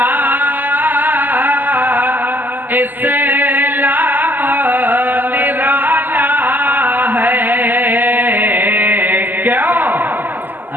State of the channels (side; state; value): left; late; 0.087 ms